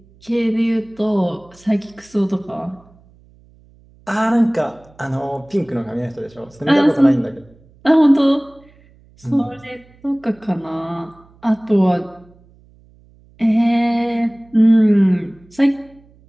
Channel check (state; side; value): noise; right; hum, 29 dB below the sound